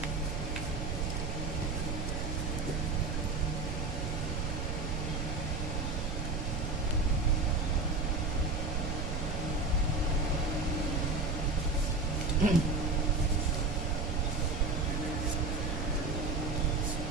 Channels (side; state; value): right; noise; rumble, 2 dB below the sound